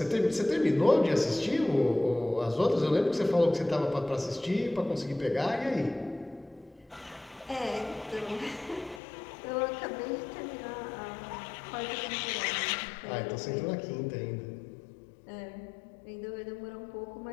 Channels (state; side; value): drops out; right; at 9.0 s